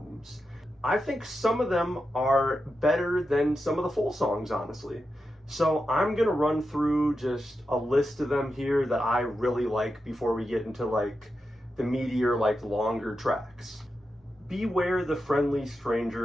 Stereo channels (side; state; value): both; normal; correlation 0.89